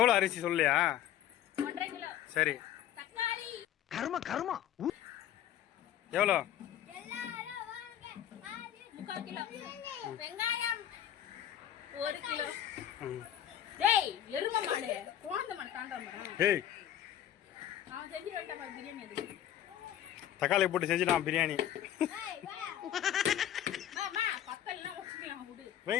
அரிசி சொல்லியா? 1.5 கிலோ. சரி. தக்காளி கர்மா எவ்வளோ? 3/4 கிலோ. வெங்காயம் 1 கிலோ. டேய் எரும மாடு கோந்த மாடு தாண்டற மரம். டேய் நான் செஞ்சு வரட்டா பாரு பிரியாணி அது. தக்காளி போட்டு செஞ்சிடலாம் பிரியாணி. ஏய் வா. மாமா பக்கல்லாம் வச்சுக்கலாம் விடு.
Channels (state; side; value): quieter; right; 11.3 dB